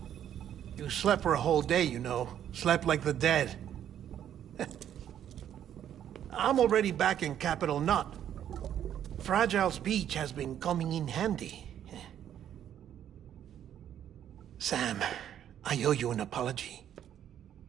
You slept for a whole day, you know. Slept like the dead. I'm already back in Capital Knot. Fragile's beach has been coming in handy. Sam, I owe you an apology.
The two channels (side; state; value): left; quieter; 10.2 dB